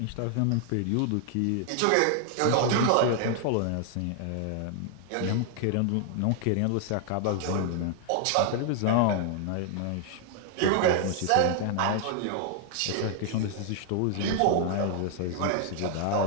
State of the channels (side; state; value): both; different; correlation 0.00